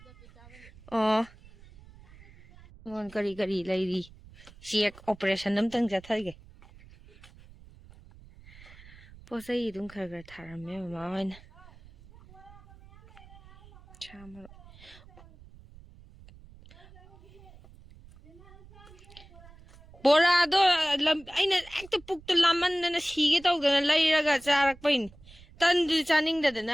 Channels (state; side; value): noise; right; rumble, 22 dB below the sound